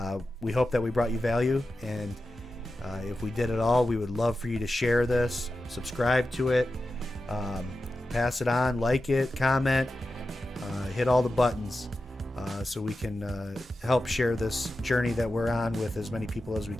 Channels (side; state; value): both; normal; correlation 0.92